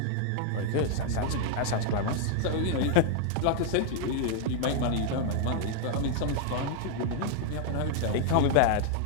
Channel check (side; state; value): both; different; correlation 0.00